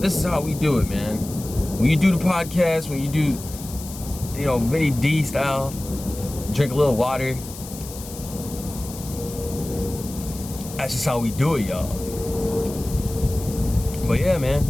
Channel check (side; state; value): left; noise; hiss, 14 dB below the sound